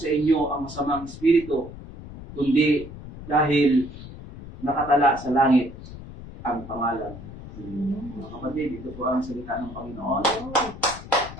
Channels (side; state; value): left; noise; rumble, 14 dB below the sound